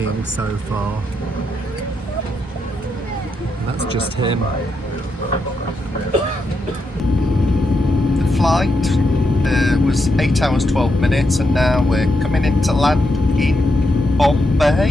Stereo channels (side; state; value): both; normal; correlation 0.82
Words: so far. And that's just him. The flight was 8 hours 12 minutes, and now we're coming into land in